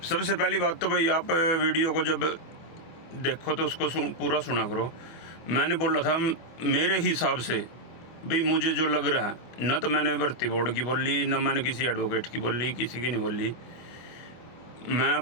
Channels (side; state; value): right; late; 24 ms